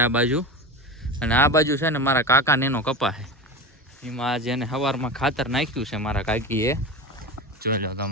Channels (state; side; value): normal; both; correlation 0.25